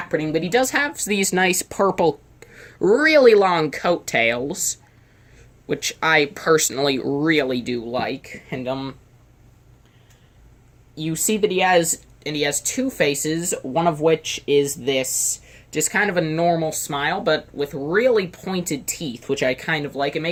printing, but he does have these nice purple, really long coattails, which I personally really do like. And you see that he has two faces, one of which is this just kind of a normal smile, but with really pointed teeth, which I kind of like. It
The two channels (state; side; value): identical; both; correlation 1.00